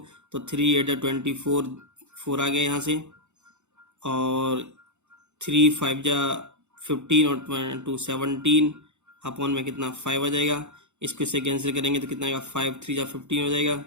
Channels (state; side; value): late; left; 0.83 ms